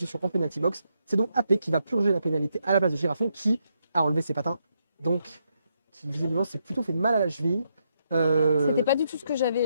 en penalty box. C'est donc AP qui va purger la pénalité à la place de Girafon qui a enlevé ses patins. Donc, qui visiblement s'est plutôt fait mal à la cheville. C'était pas du tout ce que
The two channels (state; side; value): inverted; both; correlation -0.79